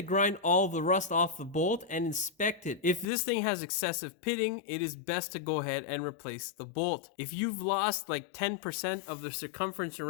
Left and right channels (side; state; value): right; drops out; at 3.1 s